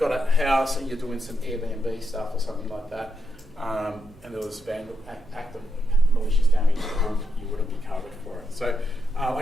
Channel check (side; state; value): right; noise; hum, 26 dB below the sound